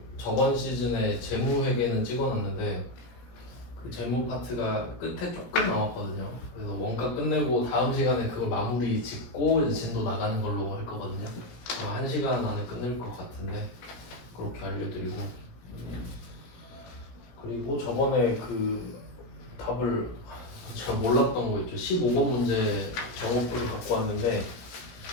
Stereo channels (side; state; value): right; late; 17 ms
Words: 저번 시즌에 재무 회계는 찍어놨는데 그 재무 파트가 끝에 조금 남았거든요. 그래서 원가 끝내고 다음 시간에 그걸 마무리 짓고 이제 진도 나가는 걸로 할 거거든요. 1시간 안에 끝낼 것 같은데 그렇게 알려드리고, 그리고 저번에 그 답을 제가 몰랐던 거 있죠. 15번 문제 정오표를 갖고 왔는데